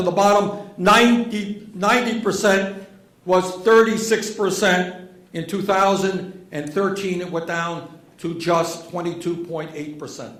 the bottom 90% was 36%. In 2013, it went down to just 22.8%.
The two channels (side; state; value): both; identical; correlation 1.00